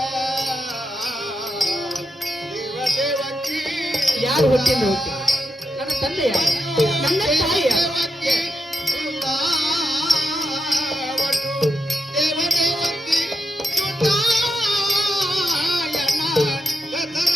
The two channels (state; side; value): normal; both; correlation 0.85